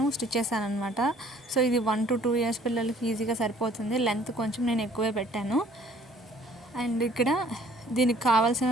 స్టిచ్ చేశాను అనమాట. సో ఇది 1 to 2 ఇయర్స్ పిల్లలకి ఈజీగా సరిపోతుంది. లెంత్ కొంచెం నేను ఎక్కువే పెట్టాను. అండ్ ఇక్కడ దీనికి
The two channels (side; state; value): both; normal; correlation 0.57